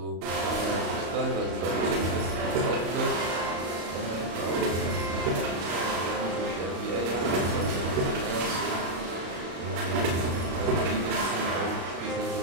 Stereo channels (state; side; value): late; left; 35 ms